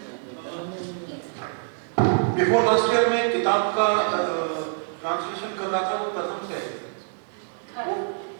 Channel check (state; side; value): silent; left; digital silence